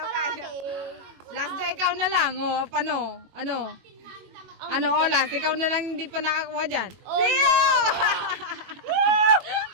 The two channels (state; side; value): late; left; 21 ms